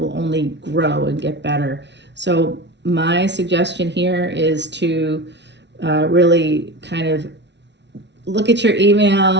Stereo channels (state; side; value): late; left; 0.51 ms